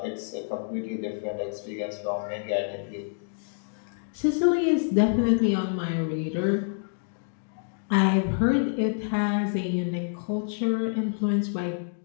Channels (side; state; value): right; silent; digital silence